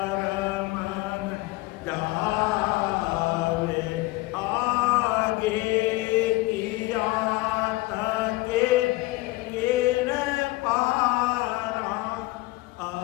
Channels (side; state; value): right; quieter; 20.7 dB